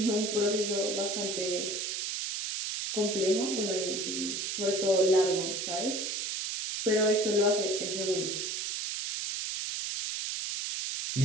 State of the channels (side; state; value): right; noise; hiss, 3 dB below the sound